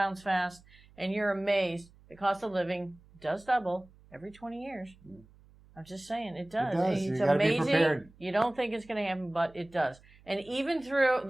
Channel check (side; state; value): right; noise; hum, 26 dB below the sound